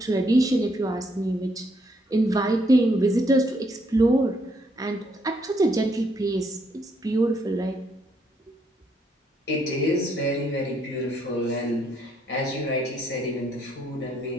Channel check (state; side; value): normal; both; correlation 0.72